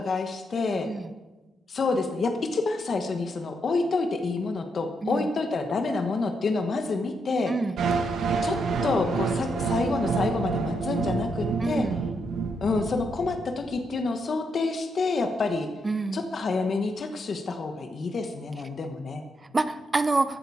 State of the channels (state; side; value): normal; both; correlation 0.80